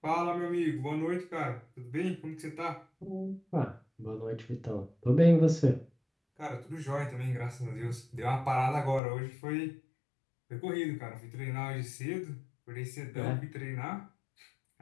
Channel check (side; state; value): right; drops out; at 9.0 s